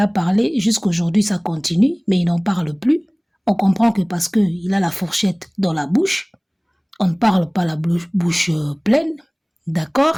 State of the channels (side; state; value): both; identical; correlation 1.00